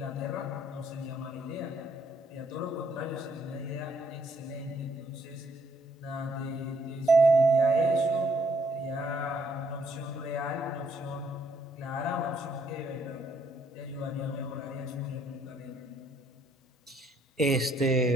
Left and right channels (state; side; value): normal; both; correlation 0.68